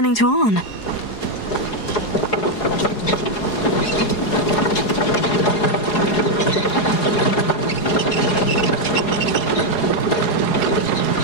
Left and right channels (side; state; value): right; late; 4.8 ms